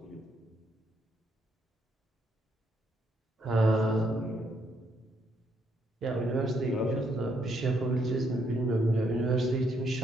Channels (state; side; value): normal; both; correlation 0.74